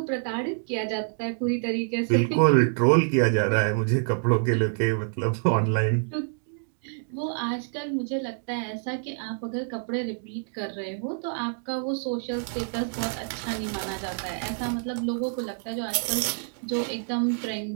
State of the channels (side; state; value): left; silent; digital silence